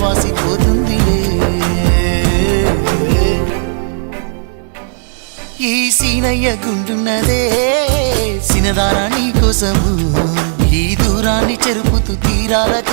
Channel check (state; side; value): silent; left; digital silence